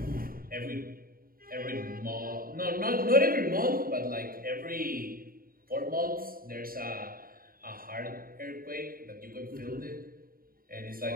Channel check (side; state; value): left; late; 0.42 ms